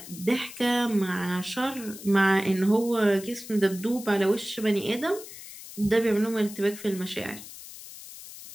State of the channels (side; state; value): left; noise; hiss, 14 dB below the sound